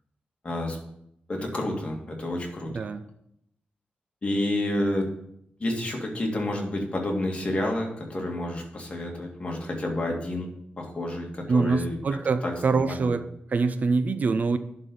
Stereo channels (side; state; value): both; normal; correlation 0.86